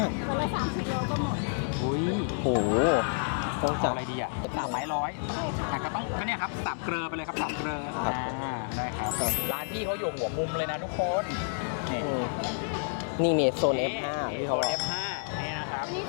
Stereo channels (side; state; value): right; silent; digital silence